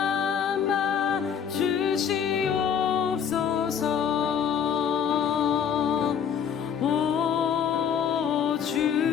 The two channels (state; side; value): quieter; right; 7.9 dB